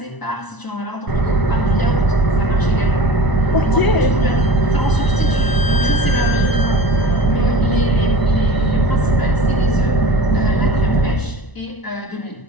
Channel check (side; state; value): right; late; 1.0 ms